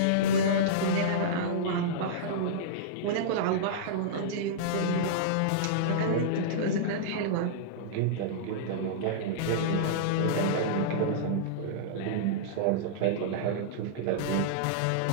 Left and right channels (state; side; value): different; both; correlation -0.03